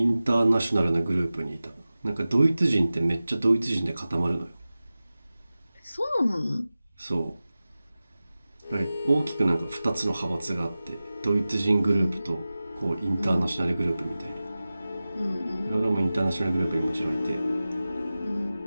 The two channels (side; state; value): both; inverted; correlation -0.96